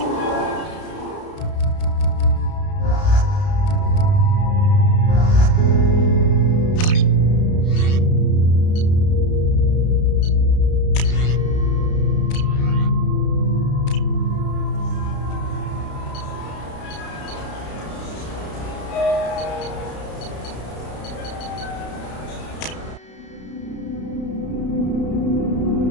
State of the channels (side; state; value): right; late; 32 ms